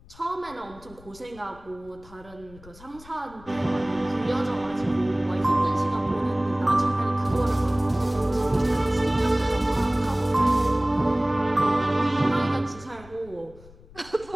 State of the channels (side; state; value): left; noise; rumble, 22 dB below the sound